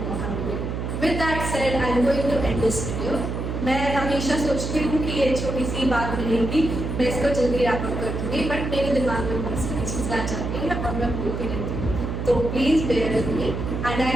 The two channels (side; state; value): right; noise; hum, 4 dB below the sound